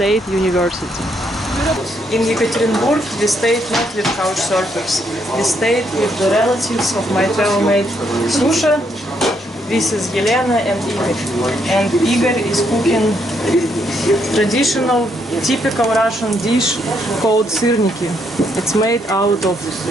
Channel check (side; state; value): both; normal; correlation 0.74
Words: University. In Yekaterinburg we stayed not with couch surfers. We stayed with the relatives of my travel mate Susha This is Yelena and Igor. And Igor is cooking traditional, typical Russian dish called syrniki. It's made out of